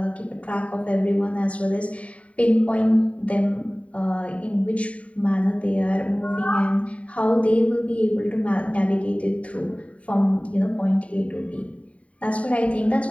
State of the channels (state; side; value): late; right; 0.066 ms